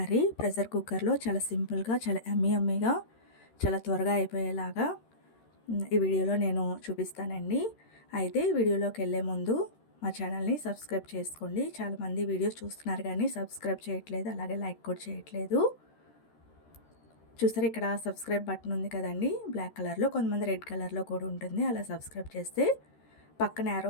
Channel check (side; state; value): right; late; 13 ms